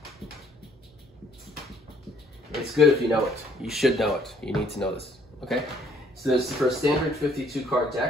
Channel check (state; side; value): normal; both; correlation 0.63